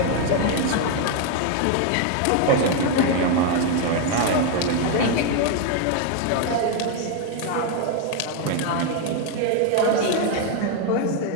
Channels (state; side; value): different; both; correlation 0.01